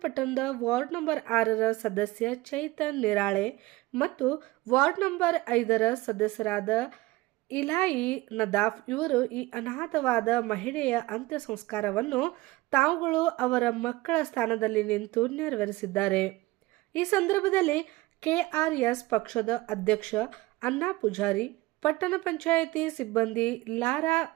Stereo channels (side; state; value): left; quieter; 19.7 dB